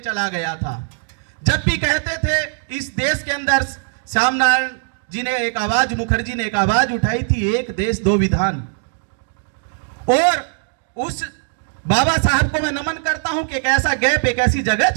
गया था। जब भी कहते थे इस देश के अंदर, श्याम नारायण जी ने एक आवाज, मुखर्जी ने एक आवाज उठाई थी, एक देश दो विधान। और उस बाबा साहब को मैं नमन करता हूं कि एक ऐसा गैप, एक ऐसी जगह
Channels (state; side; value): silent; left; digital silence